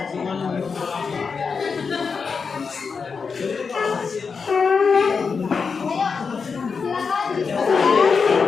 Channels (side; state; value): right; quieter; 5.3 dB